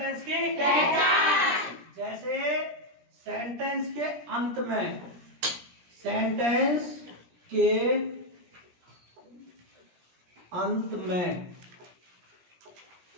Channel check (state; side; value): late; left; 17 ms